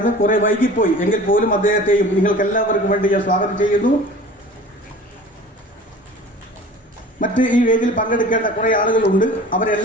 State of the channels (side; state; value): both; normal; correlation 0.42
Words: കുറെ വൈകിപ്പോയി, എങ്കിൽ പോലും അദ്ദേഹത്തെയും നിങ്ങൾക്ക് എല്ലാവർക്കും വേണ്ടി ഞാൻ സ്വാഗതം ചെയ്യുന്നു. മറ്റ് ഈ വേദിയിൽ പങ്കെടുക്കേണ്ട കുറെ ആളുകളുണ്ട്,